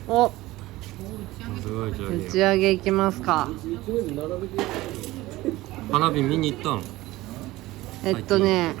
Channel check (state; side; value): quieter; left; 18.2 dB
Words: お、すごい上打ち上げ行きますか。一面並べて。花火見に行ったん？